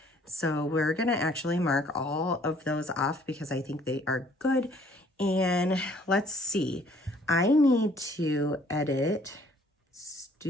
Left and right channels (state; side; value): normal; both; correlation 0.59